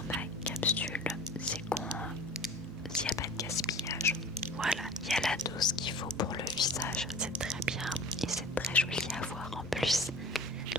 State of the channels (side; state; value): both; normal; correlation 0.41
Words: capsule, c'est s'il n'y a pas de gaspillage. Voilà, il y a la dose qu'il faut pour le visage, c'est très bien et c'est très joli à voir en plus.